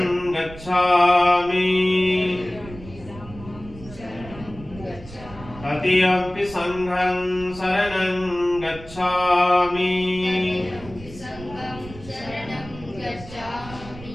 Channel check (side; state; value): right; noise; rumble, 16 dB below the sound